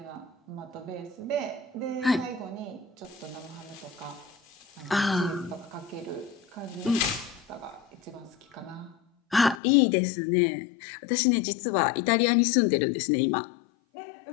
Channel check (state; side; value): drops out; right; at 9.6 s